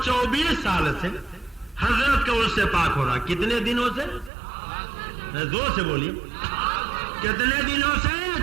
سال سے حضرت کا عرس سے پاک ہو رہا. کتنے دنوں سے؟ زور سے بولیے. کتنے دنوں سے؟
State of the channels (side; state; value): left; drops out; at 4.3 s